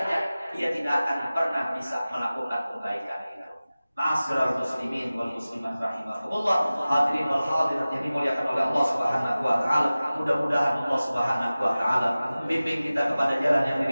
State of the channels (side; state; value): both; inverted; correlation -0.96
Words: dia tidak akan pernah bisa melakukan kebaikan itu. Ma'asyiral muslimin wal muslimat rahimakumullah, hadirin wal hadirat yang dimuliakan oleh Allah Subhanahu wa taala. Mudah-mudahan Allah Subhanahu wa taala bimbing kita kepada jalan yang